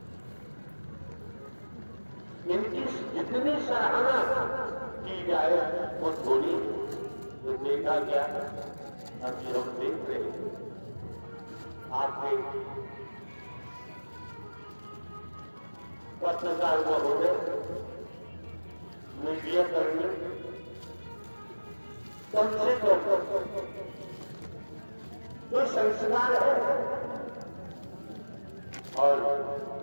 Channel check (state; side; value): inverted; both; correlation -1.00